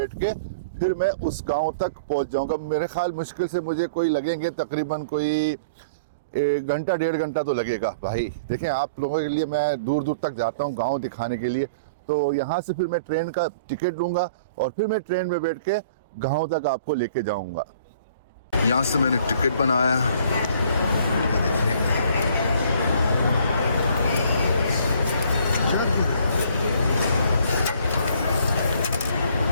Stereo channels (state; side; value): inverted; both; correlation -0.52